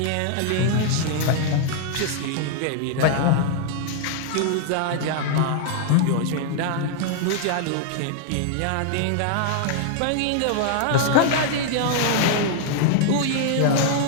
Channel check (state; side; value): different; both; correlation 0.00